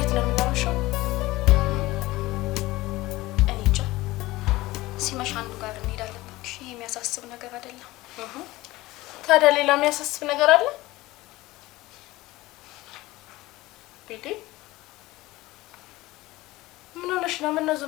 ነው የምናመሸው? እኔ እንጃ። ሲመሽ አንዱ ጋር እንሄዳለን። እባክሽ ይሄ የሚያሳስብ ነገር አይደለም። ታዲያ ሌላ የሚያሳስብ ነገር አለ? ቤቴ ምን ሆነሽ ነው? ምን ነው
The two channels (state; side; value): quieter; right; 18.8 dB